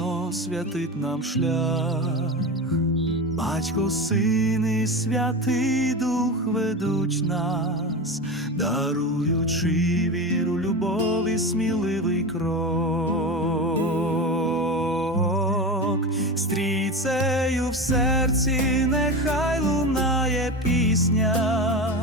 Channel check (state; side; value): normal; both; correlation 0.24